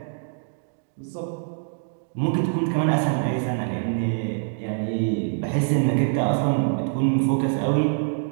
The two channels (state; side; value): silent; left; digital silence